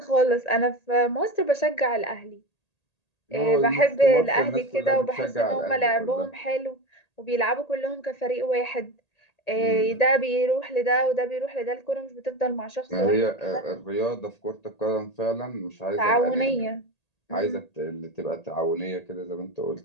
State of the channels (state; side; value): late; right; 1.8 ms